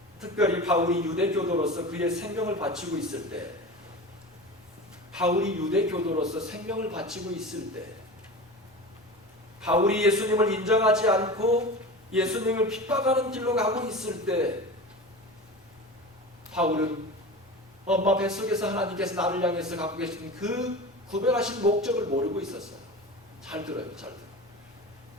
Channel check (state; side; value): normal; both; correlation 0.31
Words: 특별히 바울이 유대 교도로서 그의 생명을 바치고 있을 때, 바울이 유대 교도로서 생명을 바치고 있을 때, 바울이 예수님을 인정하지 않고 예수님을 핍박하는 길로 가고 있을 때, 바울은 엄마 뱃속에서 하나님께서 나를 향해서 갖고 계신 그 구별하신 목적을 모르고 있었어요. 잘 들어요, 잘 들어요.